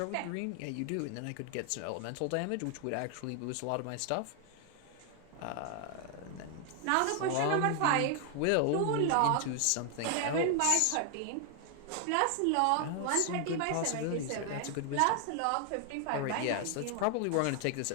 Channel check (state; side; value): different; both; correlation 0.00